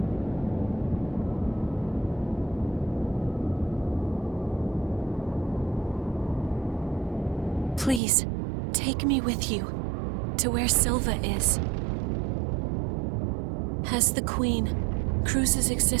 Please, take me with you to where Silva is. As the Queen, Cruz's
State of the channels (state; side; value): drops out; left; at 8.0 s